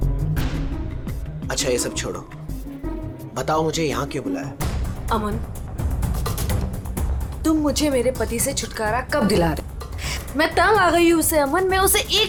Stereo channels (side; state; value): both; identical; correlation 1.00